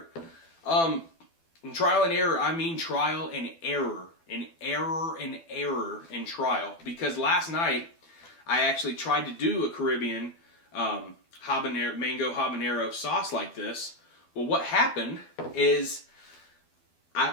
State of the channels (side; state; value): right; late; 12 ms